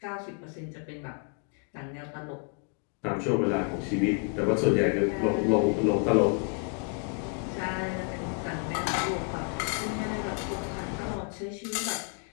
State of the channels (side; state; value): right; quieter; 37.8 dB